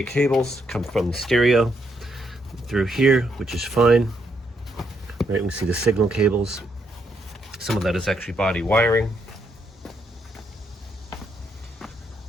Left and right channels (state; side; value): normal; both; correlation 0.76